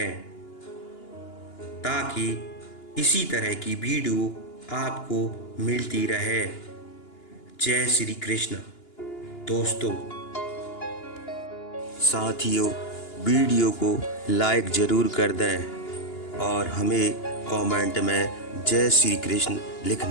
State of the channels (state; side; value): late; right; 2.9 ms